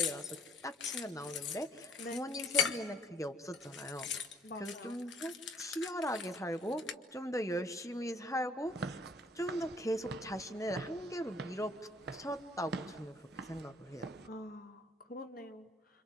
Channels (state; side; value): normal; both; correlation 0.60